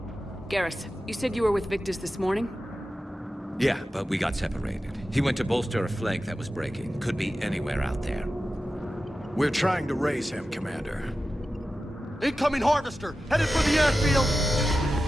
Garrus, you said you were with Victus this morning? Yeah, but we got separated. He went to bolster a flank that was breaking. Could be anywhere out there. We're trying to raise him, Commander. Incoming harvester! Headed for the airfield!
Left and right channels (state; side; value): normal; both; correlation 0.93